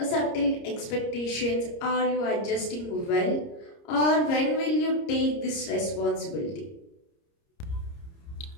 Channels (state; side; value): late; right; 30 ms